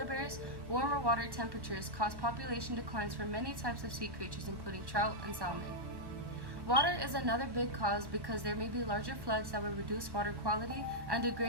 bears. Warmer water temperatures cause population declines for many types of sea creatures including trout and salmon. Water is another big cause because there may be larger floods that will reduce water quality and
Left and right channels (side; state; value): left; late; 1.1 ms